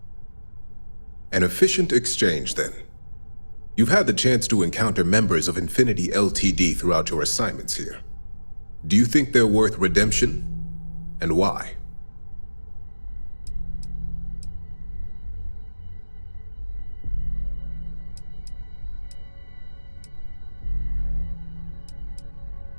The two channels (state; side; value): inverted; both; correlation -1.00